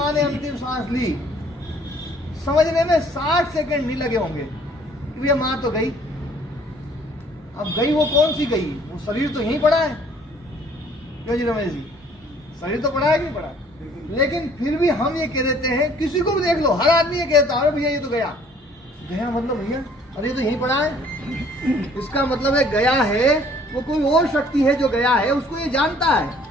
ने अंतिम सांस ली, समझने में 60 सेकंड नहीं लगे होंगे कि भैया माँ तो गई। अब गई वो कौन सी गई? वो शरीर तो यहीं पड़ा है। क्यों जी रमेश जी, शरीर तो पड़ा है कि नहीं पड़ा? लेकिन फिर भी हम ये कह देते हैं, किसी को भी देख लो, हर आदमी ये कहता है अरे भैया ये तो गया। गया मतलब भैया अरे ये तो यहीं पड़ा है। इसका मतलब है गया है वो कोई और शक्ति है जो गया है, उसको ये जानता है।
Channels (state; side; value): normal; both; correlation 0.57